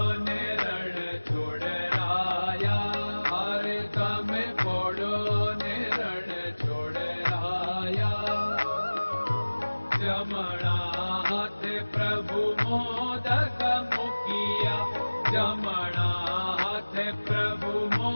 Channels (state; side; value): inverted; both; correlation -1.00